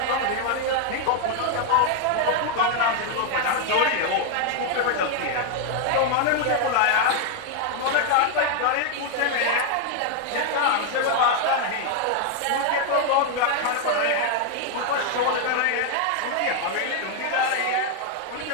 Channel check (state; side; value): different; both; correlation 0.00